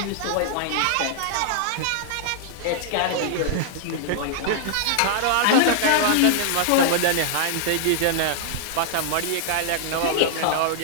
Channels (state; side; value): different; both; correlation 0.00